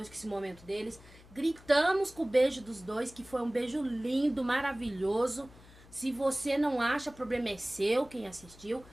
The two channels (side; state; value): left; noise; hum, 22 dB below the sound